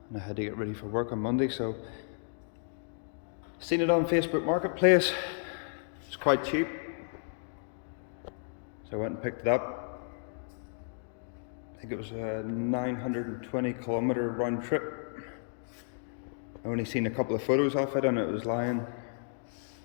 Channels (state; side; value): silent; right; digital silence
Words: And I had to get ready for work on Monday, so seen it on Facebook Marketplace. It's quite cheap. So I went and picked it up. I think it was a 920 kilometer round trip. I only seen a couple of photos of it, and it was lying